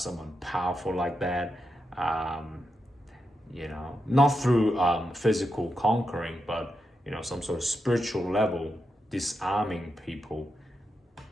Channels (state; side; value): normal; both; correlation 0.85